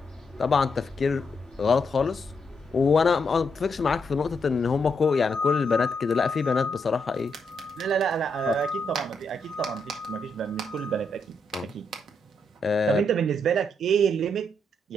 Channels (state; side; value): normal; both; correlation 0.79